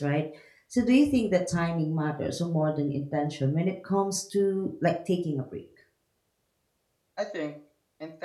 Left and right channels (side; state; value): both; identical; correlation 1.00